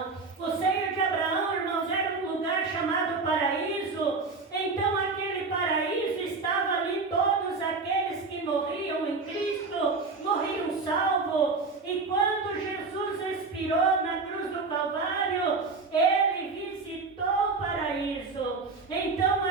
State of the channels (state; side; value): quieter; left; 4.1 dB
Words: O seio de Abraão, irmãos, era um lugar chamado paraíso. Então aquele paraíso estava ali, todos aqueles que morriam em Cristo, morriam salvos. E quando Jesus expirou na cruz do Calvário, ele visitou o paraíso. Então